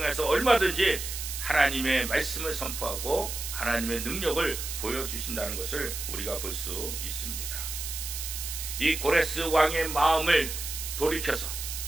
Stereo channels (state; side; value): noise; right; hiss, 6 dB below the sound